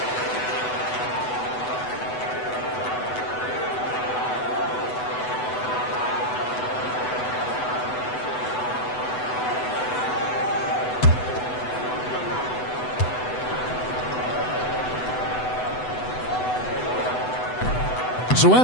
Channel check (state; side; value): late; right; 8.0 ms